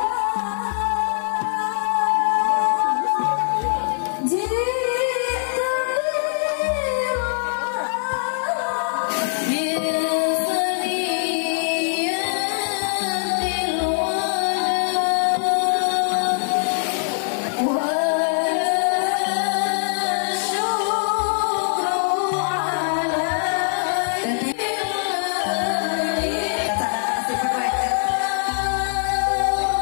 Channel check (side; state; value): right; silent; 58 dB below the other